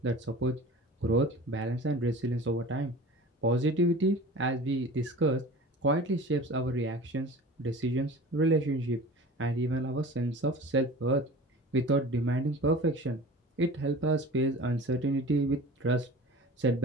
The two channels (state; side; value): normal; both; correlation 0.39